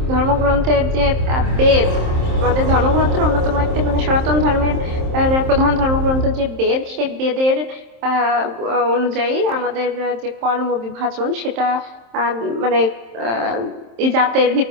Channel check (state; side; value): late; left; 27 ms